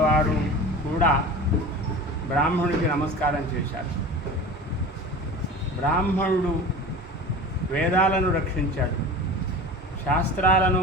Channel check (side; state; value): both; normal; correlation 0.35